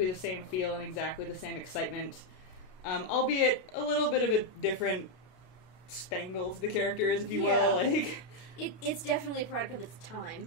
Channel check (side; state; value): right; late; 32 ms